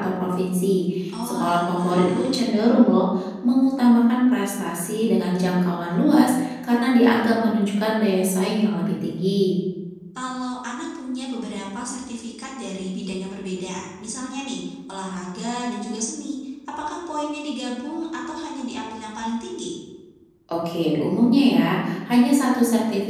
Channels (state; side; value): identical; both; correlation 1.00